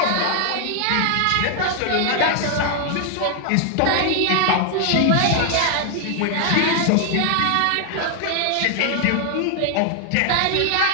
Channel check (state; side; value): different; both; correlation 0.00